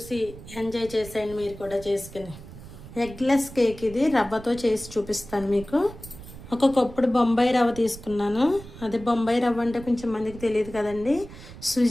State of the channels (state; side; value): noise; right; rumble, 16 dB below the sound